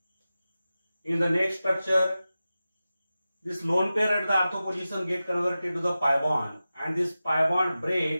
In the next structure, this lone pair at the ortho position get converted to the pi bond and this pi bond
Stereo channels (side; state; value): both; inverted; correlation -0.94